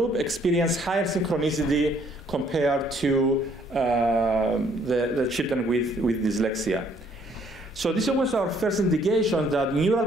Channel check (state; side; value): normal; both; correlation 0.64